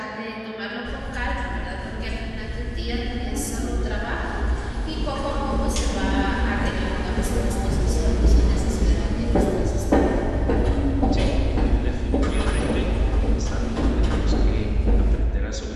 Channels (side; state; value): both; identical; correlation 1.00